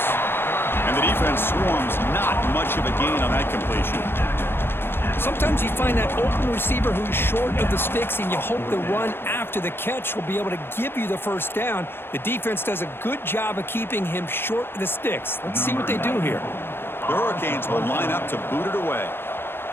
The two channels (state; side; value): late; right; 0.11 ms